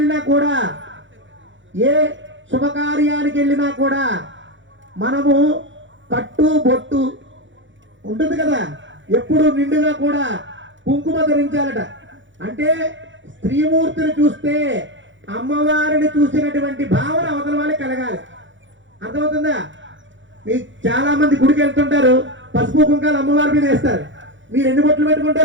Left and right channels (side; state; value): left; late; 0.55 ms